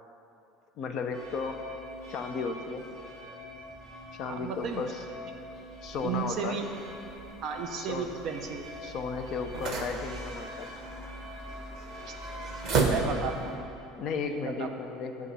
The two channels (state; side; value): normal; both; correlation 0.40